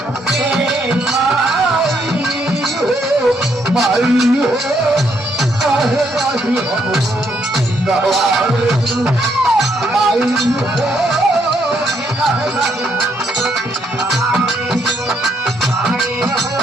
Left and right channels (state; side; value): normal; both; correlation 0.73